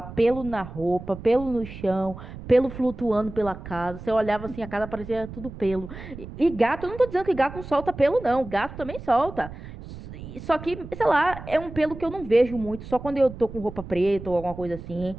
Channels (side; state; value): right; noise; rumble, 13 dB below the sound